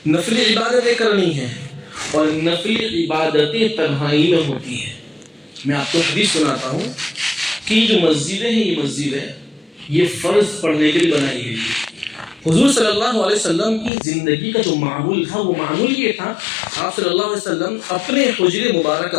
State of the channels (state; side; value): drops out; right; at 13.9 s